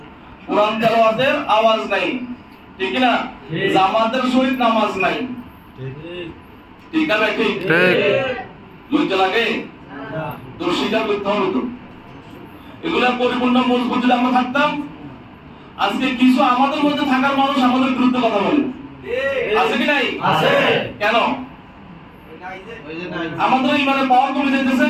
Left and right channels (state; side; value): identical; both; correlation 1.00